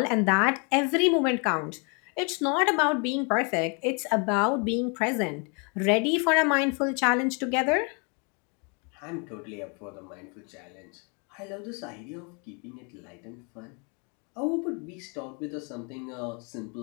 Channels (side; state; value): right; quieter; 34.8 dB